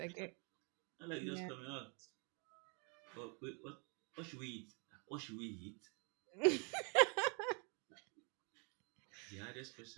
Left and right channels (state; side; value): quieter; left; 35.5 dB